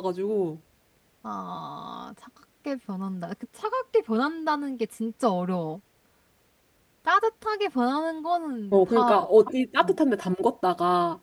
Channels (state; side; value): identical; both; correlation 1.00